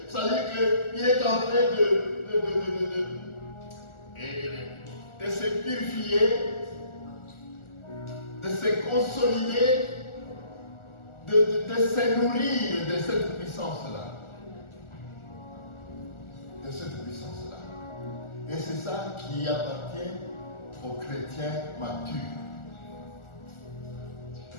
Ça veut dire qu'il est en train de se purifier, de se consolider, de se nourrir de cette puissance-là. de cette puissance-là. Et c'est ça qui appartient aux chrétiens matures.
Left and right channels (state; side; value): late; right; 1.4 ms